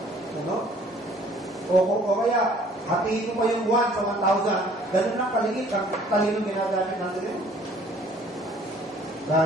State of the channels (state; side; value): normal; both; correlation 0.56